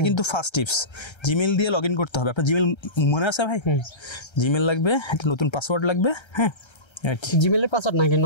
কিন্তু ফার্স্ট টিপস, জিমেল দিয়ে লগ ইন করতে হবে। আপনার জিমেল মনে আছে ভাই? জিমেল লাগবে, একটা নতুন পাসওয়ার্ড লাগবে, হ্যাঁ জিমেলের পাসওয়ার্ড নাকি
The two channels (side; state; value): right; late; 1.3 ms